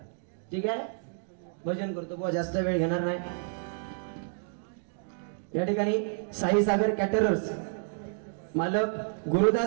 ठीक आहे, भजन करतो बुवा, जास्त वेळ घेणार नाही. या ठिकाणी साई सागर कॅटरर्स मालक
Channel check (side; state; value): left; silent; digital silence